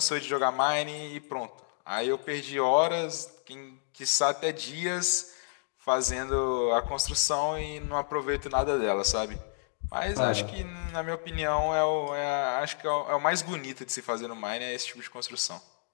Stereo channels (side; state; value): right; silent; digital silence